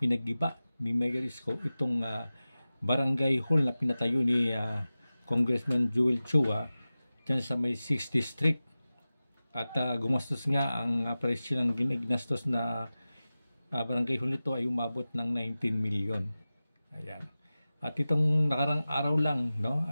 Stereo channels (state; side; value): inverted; both; correlation -0.96